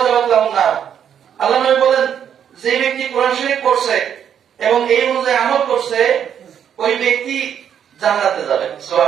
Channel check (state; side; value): quieter; left; 8.8 dB